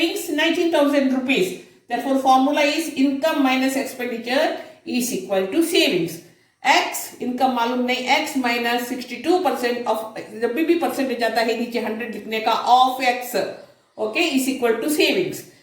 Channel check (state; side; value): identical; both; correlation 1.00